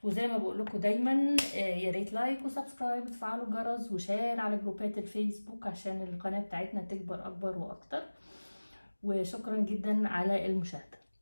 وزي ما بقول لكم دايما يا ريت لايك وسبسكرايب وتفعلوا الجرس وشير على جروبات الفيسبوك عشان القناة بتاعتنا تكبر اكبر واكتر. وشكرا جدا على المشاهدة.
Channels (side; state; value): both; inverted; correlation -1.00